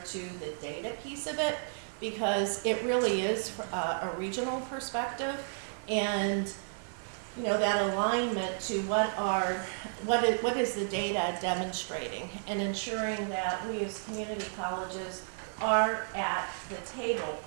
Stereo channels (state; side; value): silent; left; 56 dB below the other